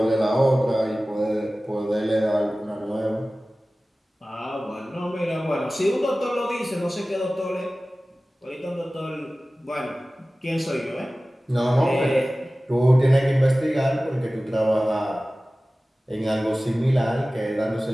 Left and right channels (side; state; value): both; normal; correlation 0.97